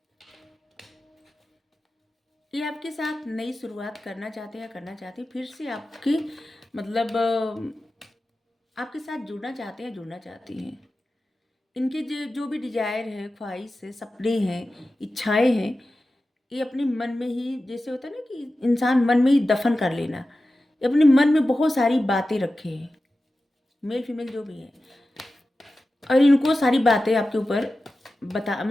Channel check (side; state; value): both; normal; correlation 0.94